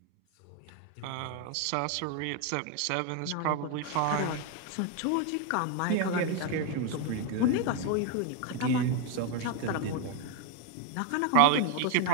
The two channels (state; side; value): different; both; correlation 0.01